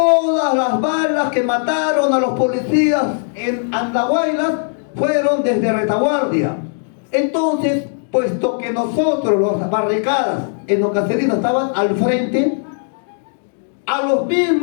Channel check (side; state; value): right; silent; digital silence